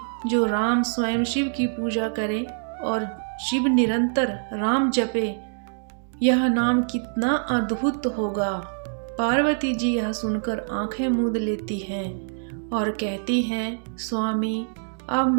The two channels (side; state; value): left; silent; digital silence